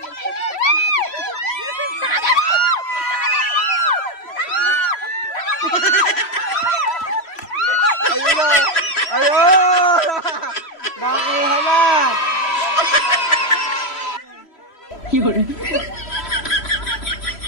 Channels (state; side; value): late; right; 3.0 ms